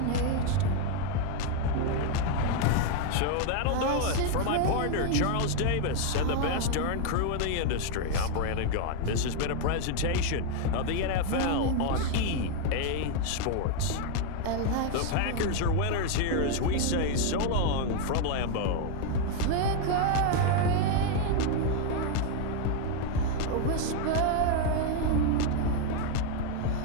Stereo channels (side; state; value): both; different; correlation 0.01